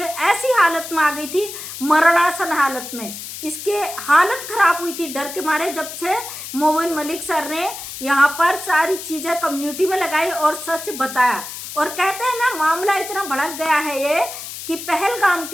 ऐसी हालत में आ गई थी, मरणासन हालत में इसके हालत खराब हुई थी डर के मारे, जब से मोमिन मलिक सर ने यहाँ पर सारी चीज़ें कम्युनिटी में लगाई और सच बताया। और कहते हैं ना, मामला इतना भड़क गया है ये कि पहलगाम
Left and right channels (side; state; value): left; noise; hiss, 10 dB below the sound